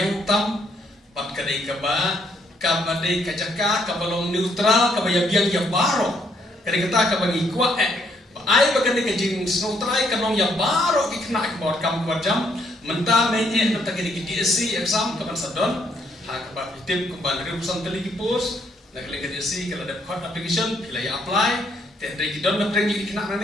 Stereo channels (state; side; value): normal; both; correlation 0.70